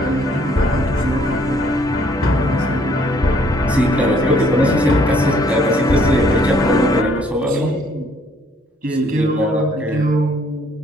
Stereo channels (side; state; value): both; normal; correlation 0.64